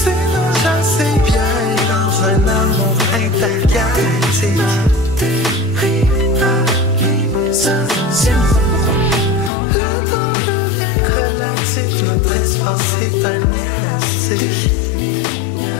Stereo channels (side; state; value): right; drops out; at 9.5 s